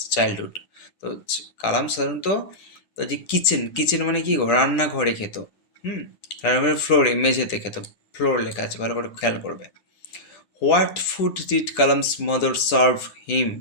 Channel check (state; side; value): late; right; 10 ms